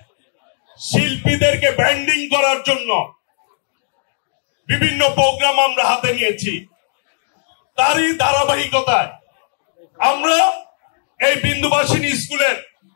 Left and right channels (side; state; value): right; silent; digital silence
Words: শিল্পীদেরকে ব্র্যান্ডিং করার জন্য বিভিন্ন প্রোগ্রাম আমরা হাতে নিয়েছি। তারই ধারাবাহিকতায় আমরা এই বিন্দুবাসিনী স্কুলের